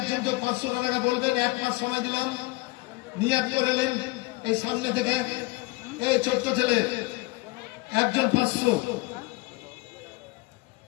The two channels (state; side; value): quieter; right; 22.6 dB